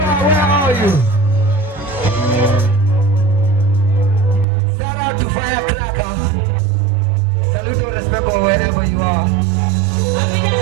where are you? Shout out to Firecracker. Salute and respect wherever you are.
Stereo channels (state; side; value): drops out; left; at 4.5 s